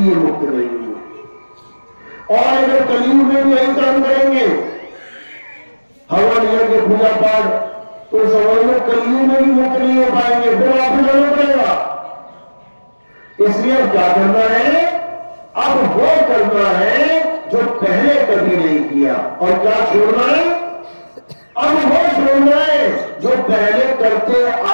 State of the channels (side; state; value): both; inverted; correlation -1.00